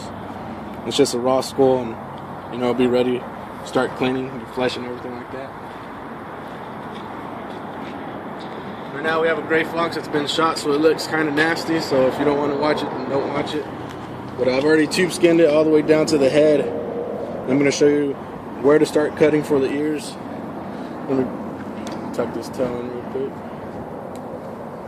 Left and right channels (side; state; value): both; identical; correlation 1.00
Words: It's just a raw skull, and you know, it'll be ready to start cleaning the flesh and everything like that. Right now we have a gray fox that's been shot, so it looks kind of nasty, so if you don't want to watch it, then don't watch it. But I've already tube skinned it all the way down to the head. I'm going to show you where to start cutting for the ears. Let me tuck this tail in real quick.